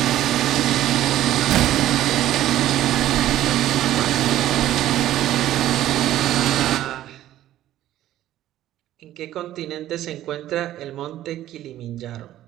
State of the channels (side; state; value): left; quieter; 13.3 dB